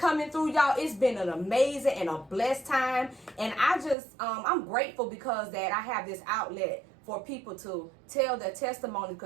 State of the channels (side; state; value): left; drops out; at 4.0 s